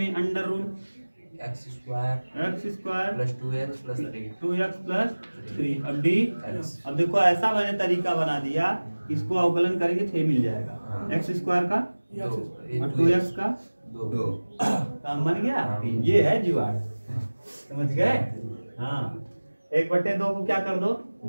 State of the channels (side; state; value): both; inverted; correlation -1.00